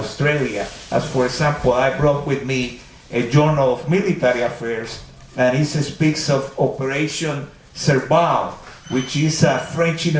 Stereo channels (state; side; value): identical; both; correlation 1.00